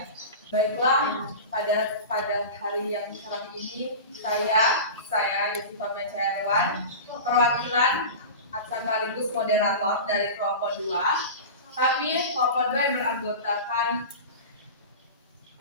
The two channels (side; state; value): both; inverted; correlation -0.30